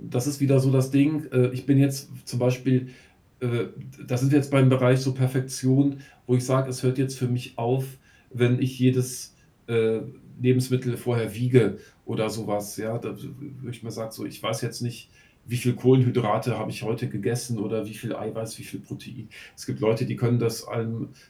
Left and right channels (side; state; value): both; identical; correlation 1.00